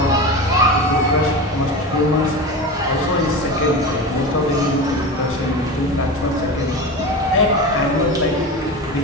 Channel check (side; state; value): both; normal; correlation 0.26